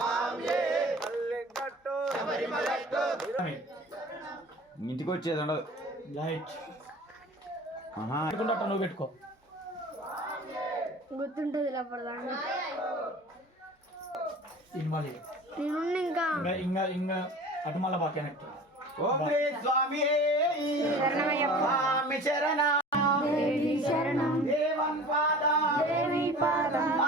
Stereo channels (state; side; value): normal; both; correlation 0.41